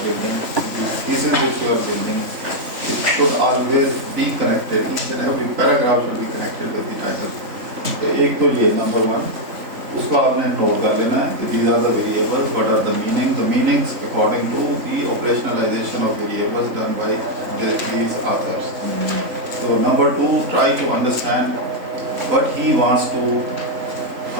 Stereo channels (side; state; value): left; late; 3.5 ms